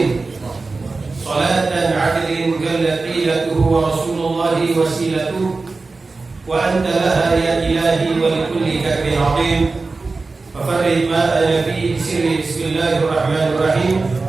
salatan 'adlin kallaqilatuhu wa rasulullahi wasilatuhu wa anta laha ya ilahi wa likulli kabir azim fafarrid ma ana fi sirri. Bismillahirrahmanirrahim.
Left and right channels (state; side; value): quieter; left; 3.8 dB